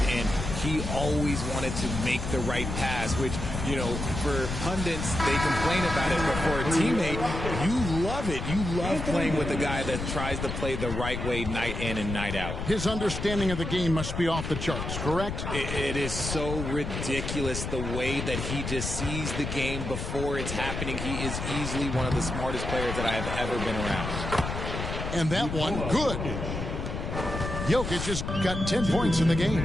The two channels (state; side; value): noise; left; rumble, 4 dB below the sound